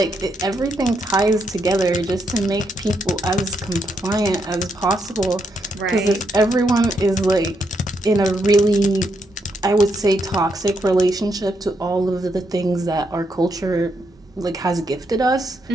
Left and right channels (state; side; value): normal; both; correlation 0.79